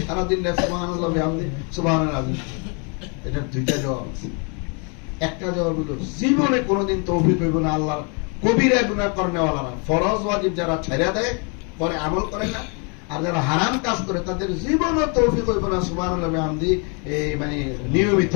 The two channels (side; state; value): right; quieter; 36.1 dB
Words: সারাদিন সুবহানাল্লাহ বিহামদি সুবহানাল আযীম। এটার দুইটা জবাব আছে। একটা জবাব হলো জীবনে কোনোদিন তৌফিক হইব না আল্লাহর কবিরা গুনাহ করনেওয়ালারা, ফরজ ওয়াজিব যারা ছেড়ে দেয় পরে আমল করে না, আর যারা হারাম কাজ করে তাদের জীবনও তৌফিক হইব না সুবহানাল্লাহ বিহামদি মানে নিয়মিত